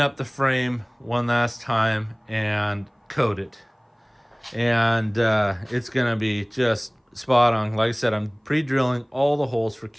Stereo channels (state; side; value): identical; both; correlation 1.00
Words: the frame one last time, and coat it. And it's gonna be just spot on. Like I said, I'm pre-drilling all the holes for